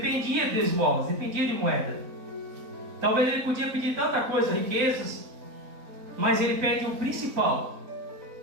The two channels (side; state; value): left; late; 3.9 ms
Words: de esmolas, dependia de moeda. Talvez ele podia pedir tanta coisa, riquezas, mas ele pede o principal,